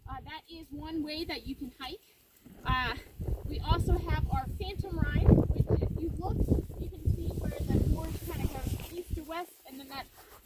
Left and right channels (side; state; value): both; identical; correlation 1.00